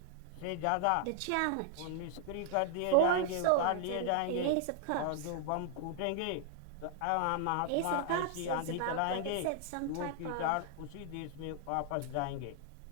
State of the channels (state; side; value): different; both; correlation 0.00